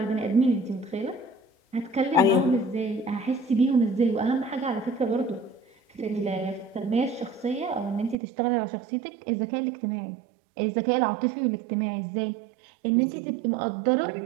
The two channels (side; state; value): left; drops out; at 8.2 s